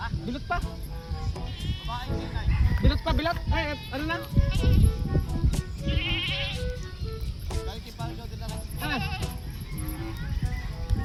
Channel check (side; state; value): both; identical; correlation 1.00